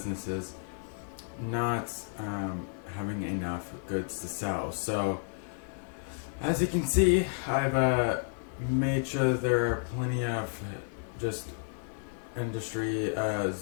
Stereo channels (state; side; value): silent; right; 57 dB below the other